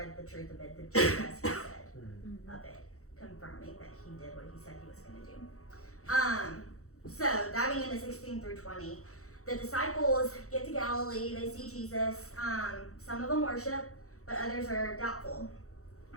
the truth of it, just as he said of it, confirming that he did what he said he was going to do. So diving into 16 through 20, the disciples get to Galilee, they see Jesus. Some of them worship, but others are doubtful.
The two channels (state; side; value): late; right; 0.64 ms